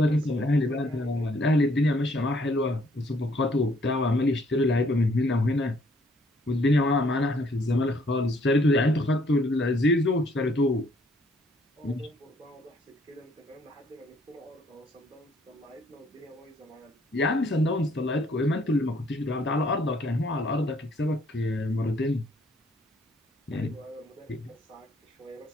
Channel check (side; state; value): both; normal; correlation 0.65